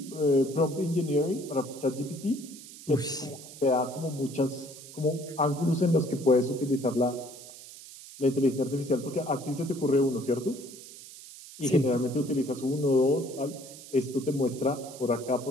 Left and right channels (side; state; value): right; noise; hiss, 16 dB below the sound